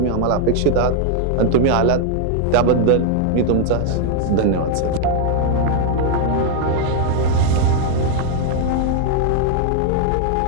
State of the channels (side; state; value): both; different; correlation 0.00